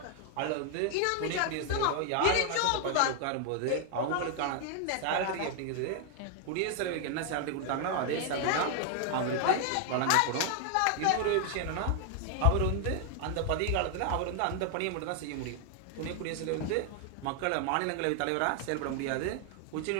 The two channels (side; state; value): both; different; correlation 0.00